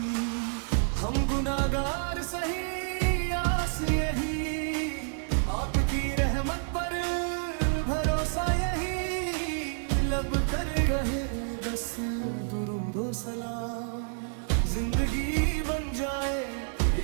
ہم گناہگار سہی آس یہی، آپ کی رحمت پر بھروسہ یہی، لب کر رہے بس درود و سلام، زندگی بن جائے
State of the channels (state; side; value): silent; left; digital silence